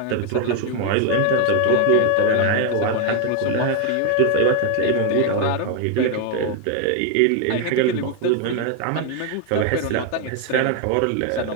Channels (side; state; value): both; different; correlation 0.01